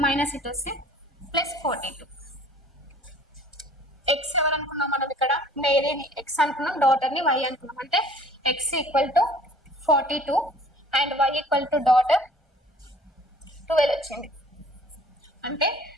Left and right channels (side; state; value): both; normal; correlation 0.51